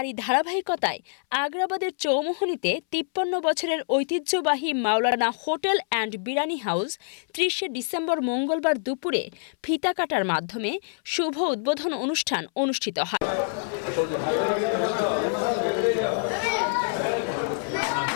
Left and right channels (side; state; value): right; silent; 61 dB below the other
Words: ধারাবাহিকতায় আগ্রাবাদের চৌমুহনীতে ৫৩ বছরের ঐতিহ্যবাহী Maulana hotel and biryani house ৩০ December মঙ্গলবার দুপুরে ফিতা কাটার মাধ্যমে শুভ উদ্বোধন অনুষ্ঠান অনুষ্ঠিত হয়।